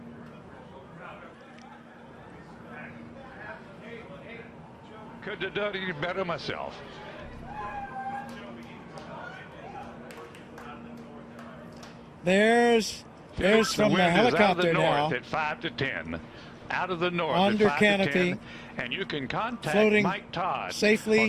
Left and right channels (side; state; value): both; identical; correlation 1.00